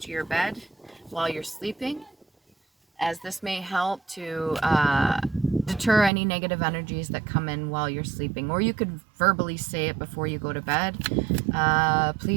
to your bed while you're sleeping, as this may help to deter any negative energies that come in while you're sleeping. Or you could verbally say it before you go to bed.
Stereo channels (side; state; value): left; drops out; at 6.1 s